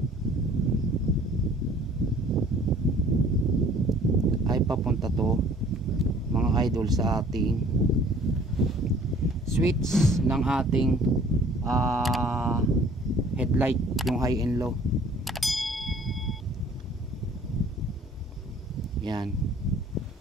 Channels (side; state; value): both; normal; correlation 0.54